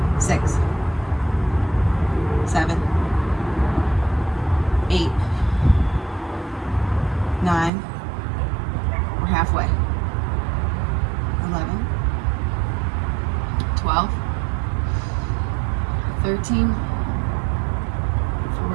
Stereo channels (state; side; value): drops out; left; at 7.7 s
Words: 6, 7, 8, 9. We're halfway. 11, 12, 13,